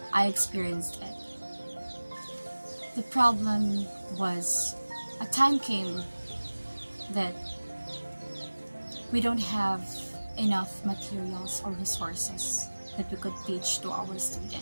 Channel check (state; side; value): inverted; both; correlation -1.00